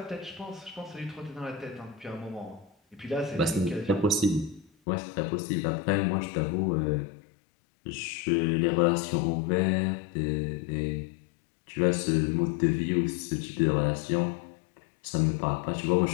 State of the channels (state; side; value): drops out; right; at 4.7 s